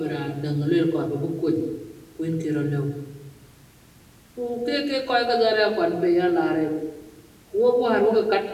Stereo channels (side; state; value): both; identical; correlation 1.00